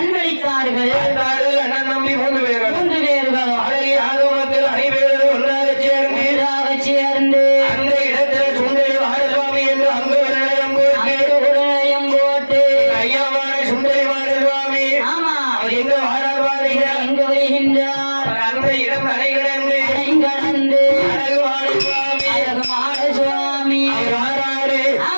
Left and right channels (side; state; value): both; inverted; correlation -1.00